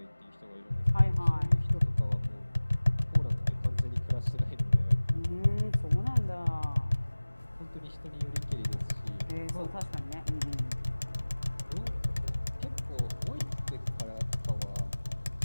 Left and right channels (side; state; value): both; inverted; correlation -1.00